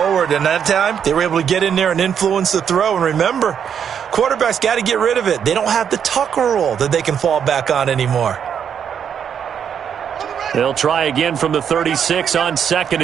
And that time, they were able to get in there and influence the throw. And remember, quarterbacks got to get rid of it. They don't have the Tucker rule that they can fall back on anymore. They'll try again from the 36 on 2nd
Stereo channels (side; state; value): left; quieter; 8.0 dB